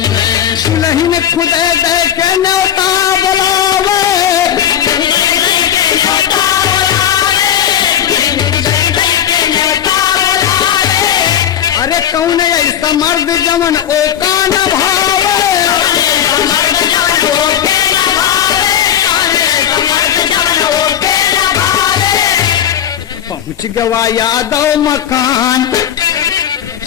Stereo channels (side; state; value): right; quieter; 10.2 dB